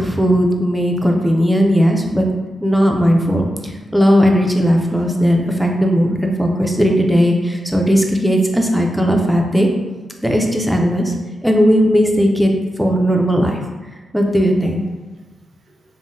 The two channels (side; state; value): both; normal; correlation 0.90